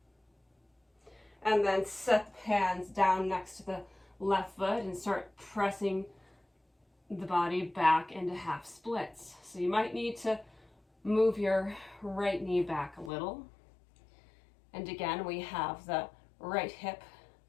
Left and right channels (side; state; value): right; drops out; at 13.1 s